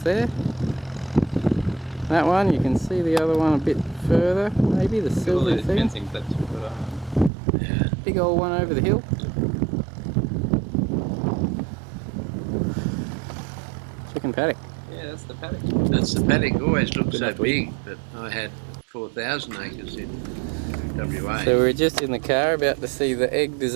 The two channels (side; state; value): left; drops out; at 7.3 s